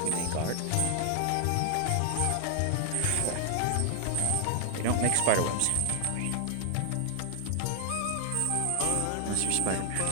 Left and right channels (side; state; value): both; different; correlation 0.00